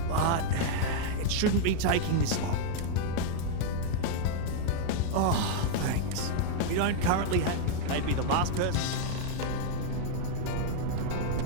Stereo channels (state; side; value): different; both; correlation -0.01